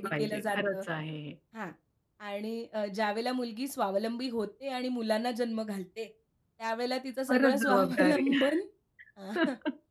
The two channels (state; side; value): identical; both; correlation 1.00